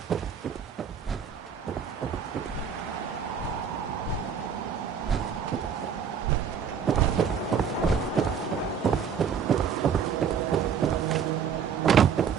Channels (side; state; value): left; quieter; 7.1 dB